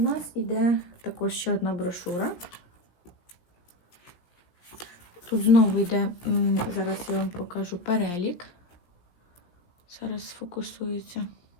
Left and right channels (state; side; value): late; right; 17 ms